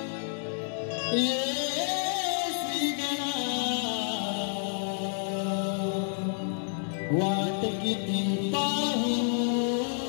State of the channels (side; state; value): right; silent; digital silence